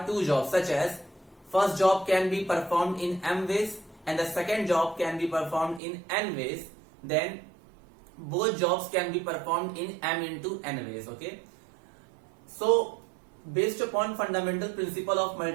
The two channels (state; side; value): drops out; left; at 5.8 s